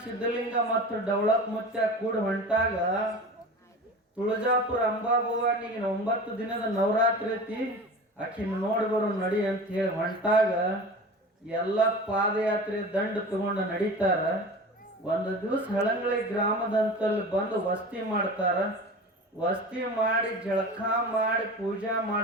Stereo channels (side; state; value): both; normal; correlation 0.34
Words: ಸಿದ್ಧಲಿಂಗ ಮತ್ತು ಡವಳಪ್ ಮುತ್ಯ ಕೂಡ ಹೊಂಟಾಗ ತುಳಜಾಪುರ ಅಂಬಾಭವಾನಿಗೆ 9 ದಿನದ ನವರಾತ್ರಿ ಐತಿ, ಆಕಿನ ನೋಡಿ ಬರೋ ನಡಿ ಅಂತ ಹೇಳಿ ಹೊಂಟಾಗ ಎಲ್ಲ ಪಾದಯಾತ್ರೆ ದಂಡ ತಗೊಂಡು ನಡೀತಾರ. ಒಂದು ದಿವಸ ಹಳಂಗಳಿ ಗ್ರಾಮದಂತಲ್ಲಿ ಬಂದು ವಸ್ತಿ ಮಾಡ್ತಾರ. ವಸ್ತಿ ಮಾಡಿ ಜಳಕ ಮಾಡಿ ಪೂಜಾ